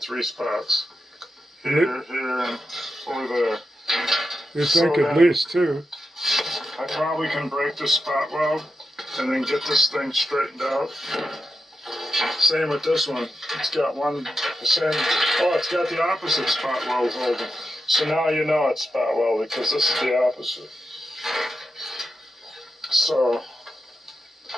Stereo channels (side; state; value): both; normal; correlation 0.89